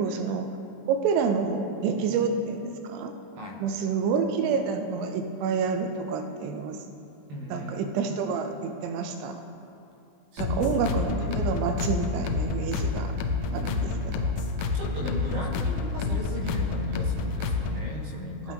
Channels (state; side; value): late; left; 20 ms